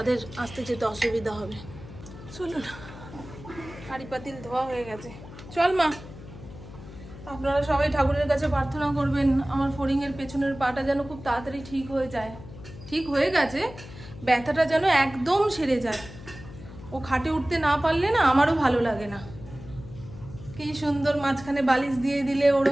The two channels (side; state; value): left; noise; hum, 15 dB below the sound